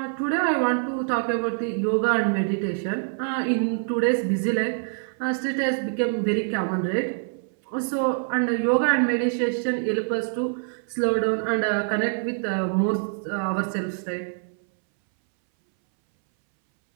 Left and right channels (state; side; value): silent; left; 62 dB below the other